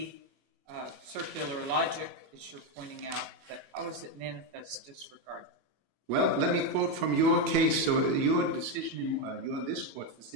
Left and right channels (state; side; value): late; left; 21 ms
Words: circular logic, as you're pointing out, but how is it manifest disregard? Well, let me quote from your case, so your decision, this court's